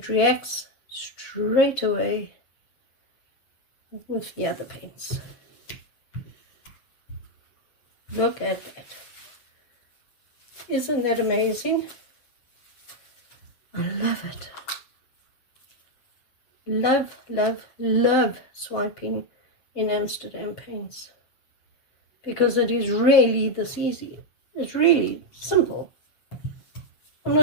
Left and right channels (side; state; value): right; late; 7.3 ms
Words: reacts straight away with the other paints. Look at that. Isn't that amazing? I love it. Love, love, love swiping in Amsterdam paints. Because it is really this easy. It's really simple. I'm